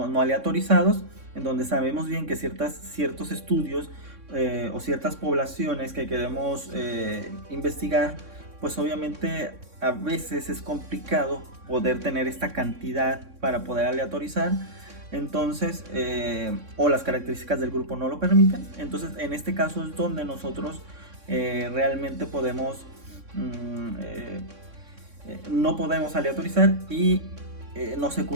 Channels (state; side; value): late; left; 3.6 ms